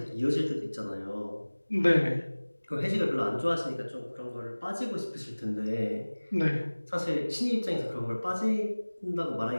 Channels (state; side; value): inverted; both; correlation -1.00